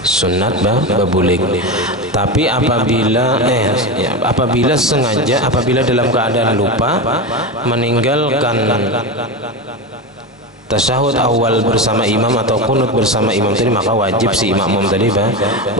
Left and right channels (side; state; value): both; normal; correlation 0.19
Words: sunat berbulik. Tapi apabila sengaja, apabila dalam keadaan lupa meninggalkan tasyahud awal bersama imam atau kunut bersama imam tadi, maka wajib si makmum tadi